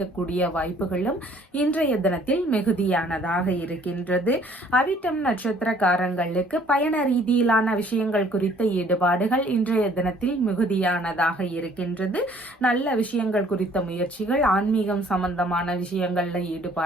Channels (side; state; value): both; normal; correlation 0.58